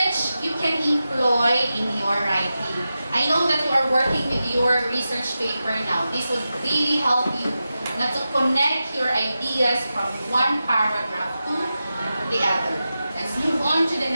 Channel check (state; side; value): inverted; both; correlation -0.92